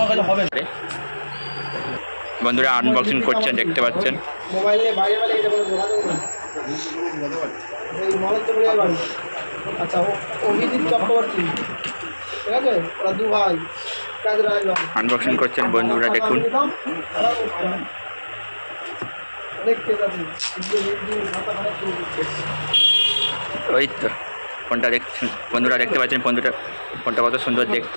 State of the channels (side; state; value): both; inverted; correlation -1.00